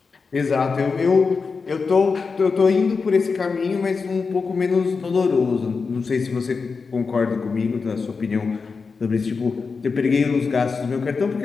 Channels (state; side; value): quieter; right; 4.9 dB